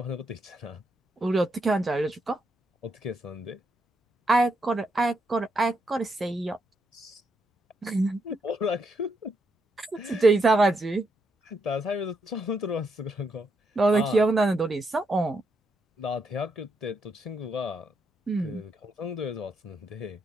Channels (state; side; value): normal; both; correlation 0.79